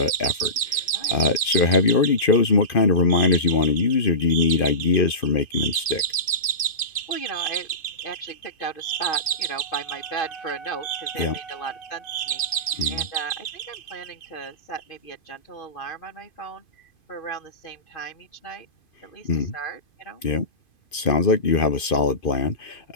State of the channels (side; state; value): right; late; 2.5 ms